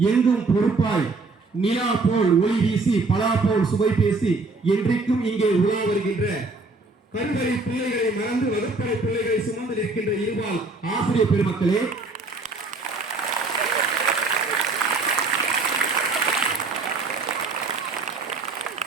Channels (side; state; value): left; quieter; 3.6 dB